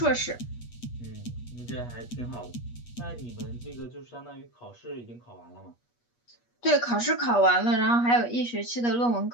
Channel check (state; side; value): late; right; 8.4 ms